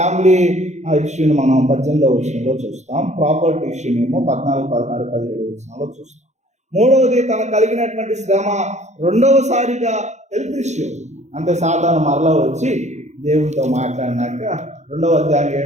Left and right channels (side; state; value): left; late; 0.33 ms